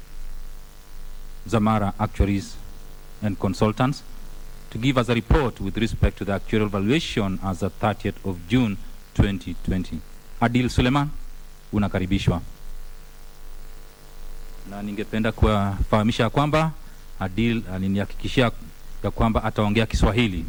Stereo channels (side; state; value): both; identical; correlation 1.00